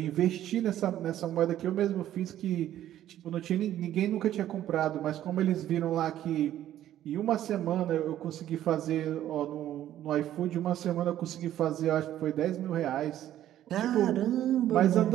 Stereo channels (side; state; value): left; quieter; 12.3 dB